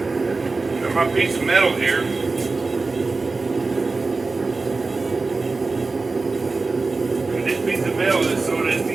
Got my piece of metal here. This piece of metal is so that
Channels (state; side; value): quieter; left; 3.8 dB